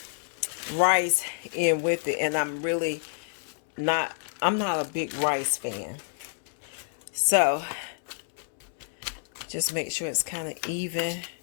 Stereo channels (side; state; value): right; silent; 59 dB below the other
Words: rice in with it, and I'm not a big rice fan. So just make sure it's kind of even